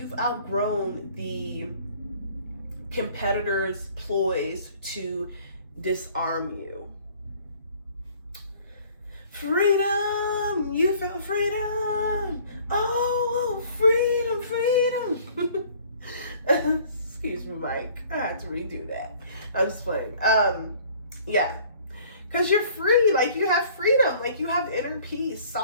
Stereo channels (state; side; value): inverted; both; correlation -0.54